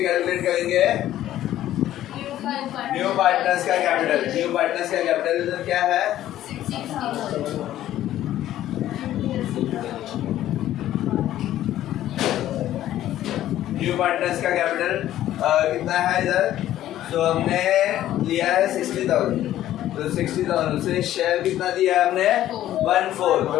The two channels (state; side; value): quieter; right; 13.0 dB